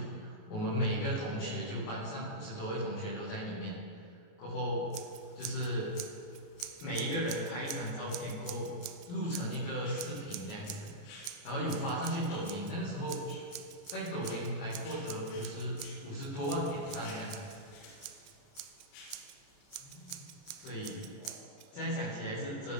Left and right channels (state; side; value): late; right; 28 ms